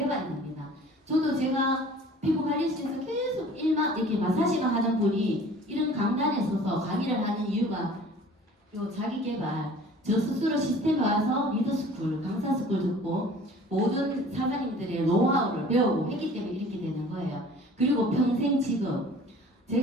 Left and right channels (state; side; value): normal; both; correlation 0.48